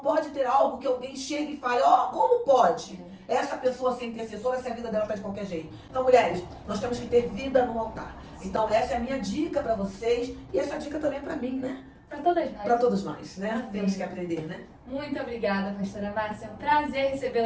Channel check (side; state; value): both; identical; correlation 1.00